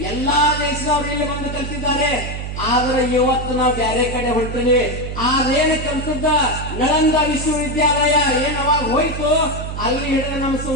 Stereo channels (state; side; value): noise; right; hum, 6 dB below the sound